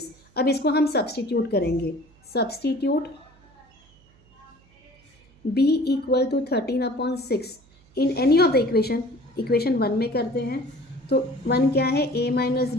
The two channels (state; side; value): noise; right; hum, 30 dB below the sound